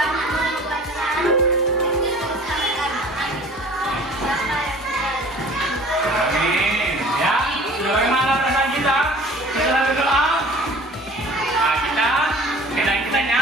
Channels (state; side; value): normal; both; correlation 0.47